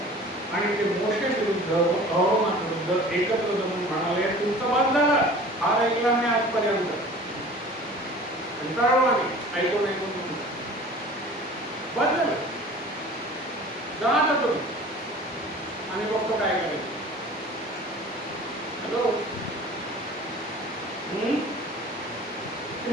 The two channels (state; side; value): normal; both; correlation 0.43